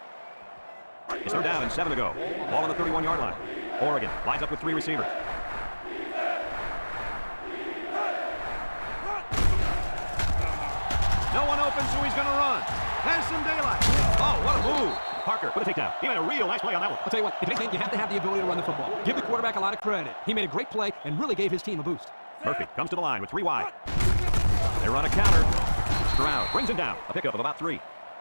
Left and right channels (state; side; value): inverted; both; correlation -1.00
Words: It's 3rd down and 7 to go. Ball on the 31-yard line. Oregon lines up with 3 receivers. No one open, so he's going to run. Has some daylight. Oh, what a move. Parker with a takedown. He made a real nice play on that one. I'll tell you what, if anything, you have to have the ability to run the football. Give the quarterback a lot of credit. He made a great play and really gave his team a boost. Murphy comes to the line with 3 wide. They run a counter. Stroud brings him down. A pickup of about 3.